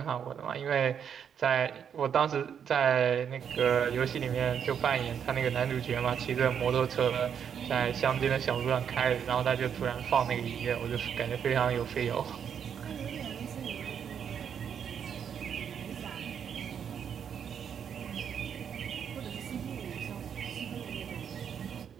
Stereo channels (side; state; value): left; quieter; 7.9 dB